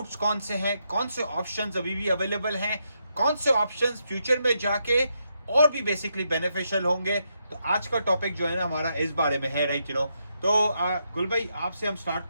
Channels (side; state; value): both; inverted; correlation -0.81